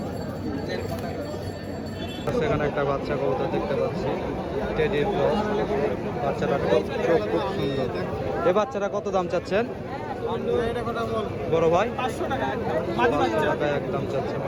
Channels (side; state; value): both; identical; correlation 1.00